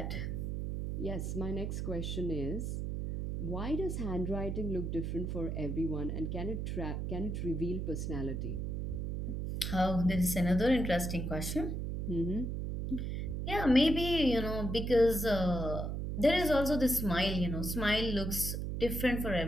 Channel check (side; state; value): right; noise; hum, 2 dB below the sound